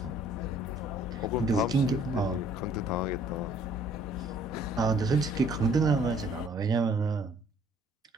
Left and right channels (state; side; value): normal; both; correlation 0.59